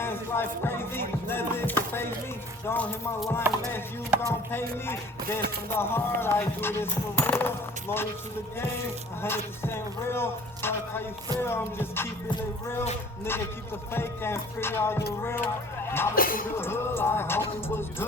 life crazy, nothing can phase me. Don't hit my line unless you gon' pay me. This from the heart, I do this for real. Loyal to the game, 100% real. Fuck how you feel, I'm just keeping it real. Nigga, keep the fake and free all the real. Mama through the hood, like homie was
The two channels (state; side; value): normal; both; correlation 0.50